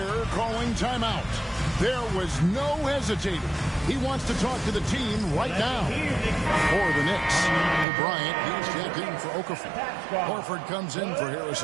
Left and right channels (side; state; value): left; drops out; at 7.9 s